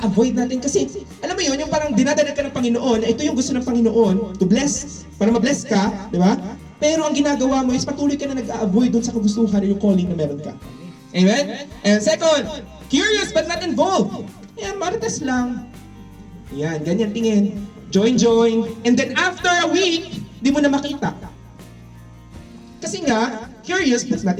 natin kasi, alam mo yun, yung parang dinadalag ka ng Panginoon, ito yung gusto ng Panginoon, to bless, para ma-bless ka, diba? Pero ang ginagawa mo is patuloy ka na nag-a-avoid dun sa kagustuhan yung calling na meron ka. Amen? And second, curious but not involved. Yan, marites lang. Yan, ganyan tingin. Join. And then after a week, di mo na makita. Kasi nga, curious but not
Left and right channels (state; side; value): identical; both; correlation 1.00